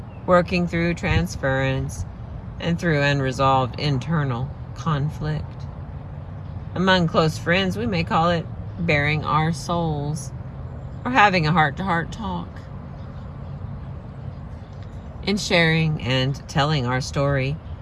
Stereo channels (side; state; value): both; identical; correlation 1.00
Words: working through transference, and through unresolved internal conflict. Among close friends, we may call it bearing our souls, or having a heart-to-heart talk. In sharing and telling our story,